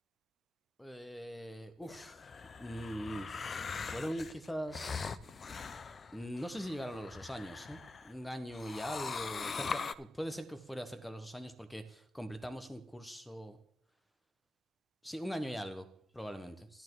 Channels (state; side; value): normal; both; correlation 0.92